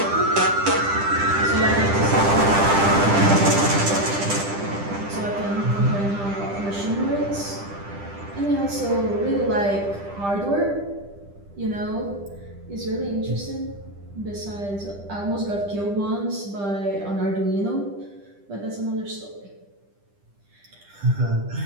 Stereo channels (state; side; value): late; left; 10 ms